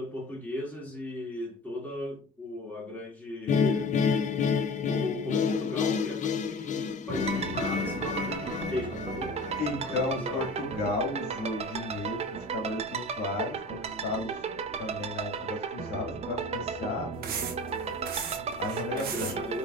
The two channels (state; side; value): normal; both; correlation 0.37